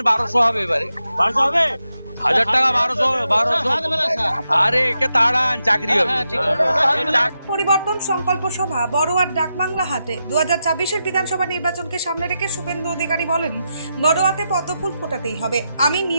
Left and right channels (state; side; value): inverted; both; correlation -0.86